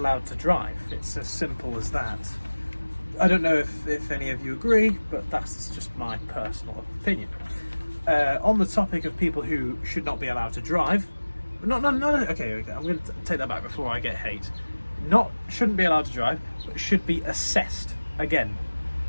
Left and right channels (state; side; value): inverted; both; correlation -1.00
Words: to drive. It's as simple as that. I don't know if any of you agree, but that's just my personal opinion. On the topic of people who should not be allowed to drive, no, okay, I'm going to take that back before I get hate. Shouldn't be allowed to drive, but should be assessed. Again,